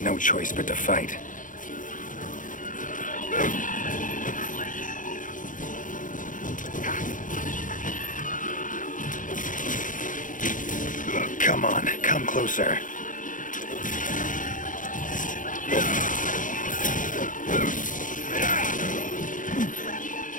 no choice but to fight. Come on, come closer.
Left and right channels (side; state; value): right; late; 0.38 ms